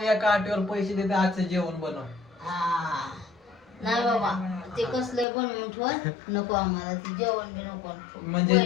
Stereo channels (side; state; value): right; drops out; at 5.2 s